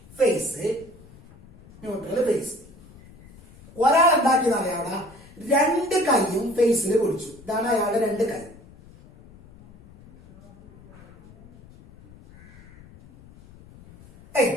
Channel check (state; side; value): noise; left; rumble, 23 dB below the sound